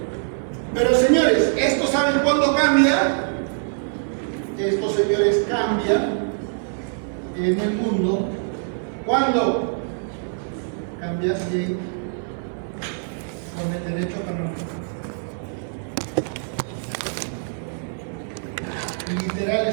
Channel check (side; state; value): left; silent; 58 dB below the other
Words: Pero señores, ¿esto saben cuándo cambia? Estos señores cambian en el mundo. ¿Cuándo? Cambia de con el derecho canónico. Literal,